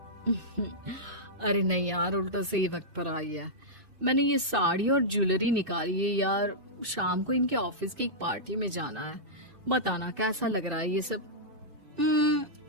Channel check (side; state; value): left; late; 2.6 ms